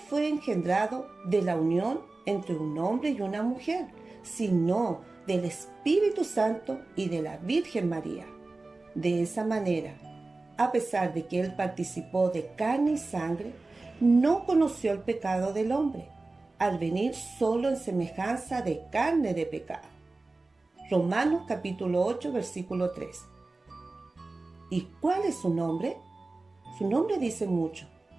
engendrado de la unión entre un hombre y una mujer, sino del Espíritu Santo y de la Virgen María. De esa manera, a pesar de que Él participó de carne y sangre, no conoció el pecado del hombre, al venir solo en semejanza de carne de pecado. Romanos capítulo 8, versículo 3. ¿Y cuál es su nombre? Su nombre dice mucho,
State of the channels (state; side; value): quieter; left; 3.3 dB